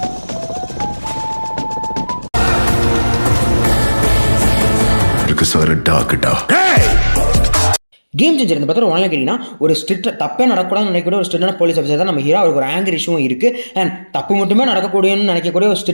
Game changer இந்த படத்தில் ஒன்றில் கேட்டிங்கன்னா ஒரு ஸ்ட்ரிக்ட் தப்பே நடக்கூடாதுன்னு நினைக்கக்கூடிய ஒரு ஸ்ட்ரிக்டான போலீஸ் ஆஃபீஸர் தான் நம்ம ஹீரோ. அவருக்கு ஒரு ஆங்கர் இஷ்யூவும் இருக்குது அண்ட் தப்பு மட்டுமே நடக்கக்கூடியன்னு நினைக்கக்கூடிய ஒரு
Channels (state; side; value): inverted; both; correlation -1.00